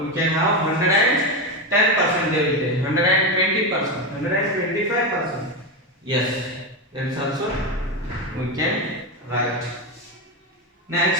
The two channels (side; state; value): both; normal; correlation 0.13